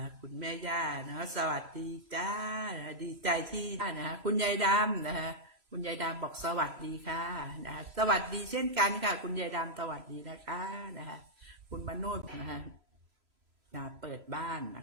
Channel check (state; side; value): late; left; 3.0 ms